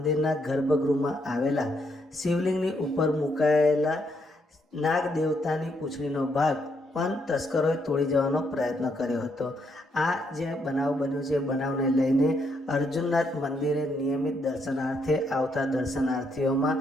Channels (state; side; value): normal; both; correlation 0.75